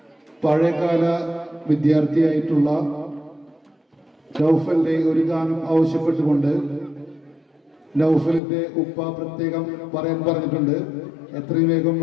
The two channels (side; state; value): right; drops out; at 8.4 s